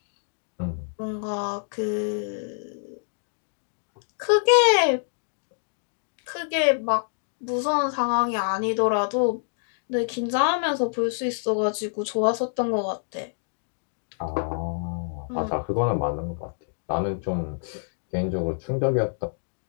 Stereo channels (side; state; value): right; silent; digital silence